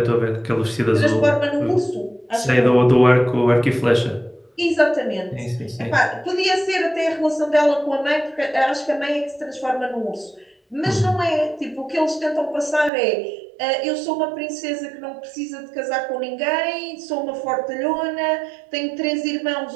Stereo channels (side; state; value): left; drops out; at 12.9 s